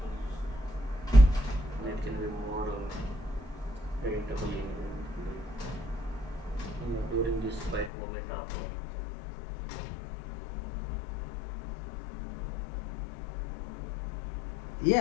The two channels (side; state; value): right; drops out; at 7.9 s